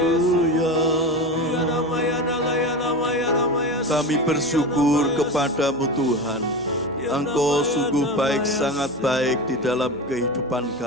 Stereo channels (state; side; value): noise; right; hum, 25 dB below the sound